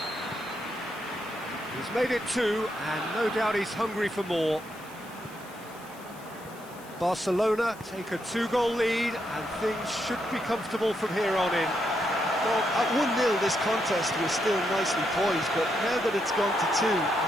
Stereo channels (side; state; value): left; noise; hiss, 22 dB below the sound